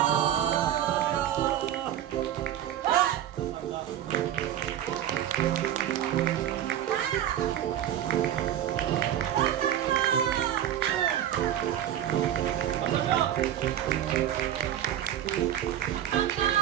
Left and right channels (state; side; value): quieter; left; 11.1 dB